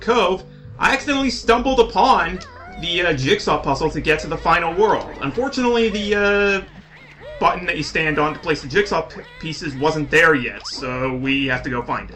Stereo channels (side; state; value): both; identical; correlation 1.00